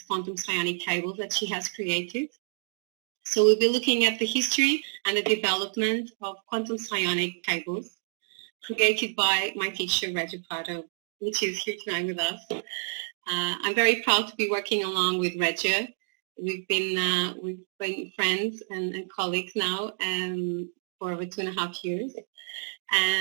quantum psionic cables that she has created. So we'll be looking at the history and the development of quantum psionic cables created by my teacher Régia Prado, which is here tonight with us. I'm very proud to be working along with Régia. We've been friends and colleagues now for over 2.5 years.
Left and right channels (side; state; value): left; silent; digital silence